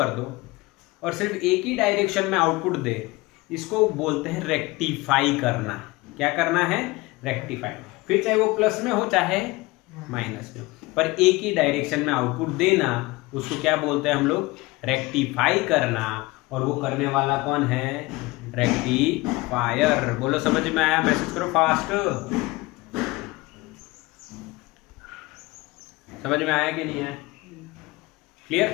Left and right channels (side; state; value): right; quieter; 21.9 dB